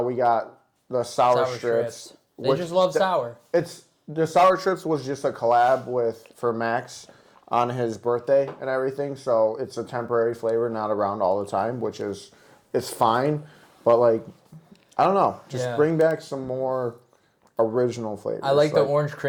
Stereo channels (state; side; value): identical; both; correlation 1.00